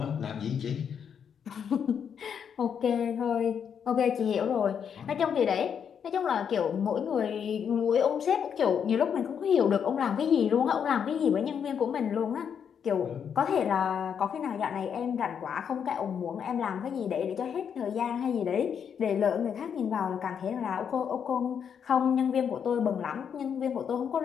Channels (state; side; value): quieter; right; 7.6 dB